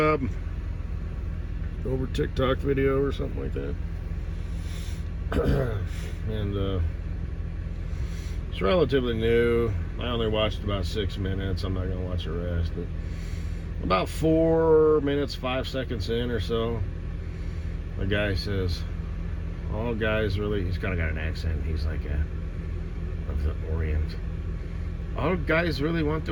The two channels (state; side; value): identical; both; correlation 1.00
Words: over TikTok video or something like that. And it's relatively new. I only watched about 6 minutes. I'm not going to watch the rest. But about 4 minutes, 5 seconds in or so, the guy says, all guys really, he's kind of got an accent. He's like of the Orient. All guys really want